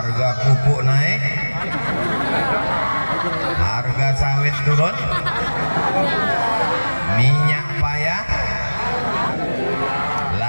pupuk naik, harga sawit turun, minyak payah,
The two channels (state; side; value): inverted; both; correlation -1.00